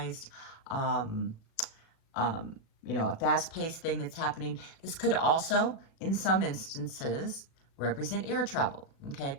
you know, a fast-paced thing that's happening. This could also, in some instances, represent air travel. Okay,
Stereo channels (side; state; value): right; late; 37 ms